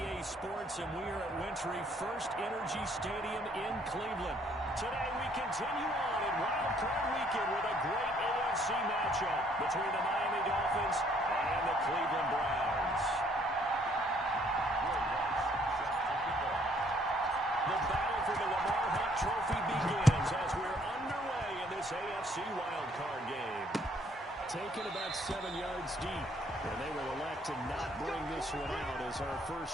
Sports, and we are at Wintry First Energy Stadium in Cleveland. Today we continue on in Wild Card Weekend with a great AFC matchup between the Miami Dolphins and the Cleveland Browns. The battle for the Lamar Hunt Trophy begins as we're underway in this AFC Wild Card game. Taken about 7 yards deep, and they will elect to not bring this one out as our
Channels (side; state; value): both; normal; correlation 0.64